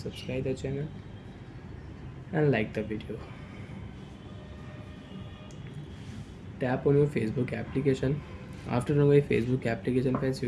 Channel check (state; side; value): identical; both; correlation 1.00